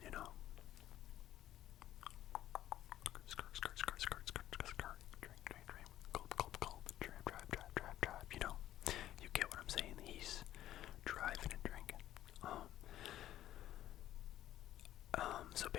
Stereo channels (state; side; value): quieter; right; 12.9 dB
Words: you know, drive, you know, you get what I'm saying. He's driving and drinking. So